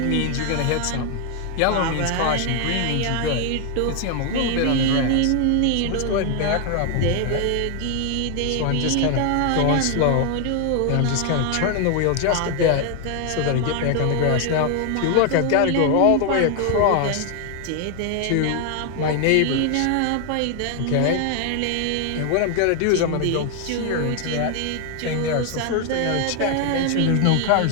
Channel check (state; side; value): different; both; correlation 0.00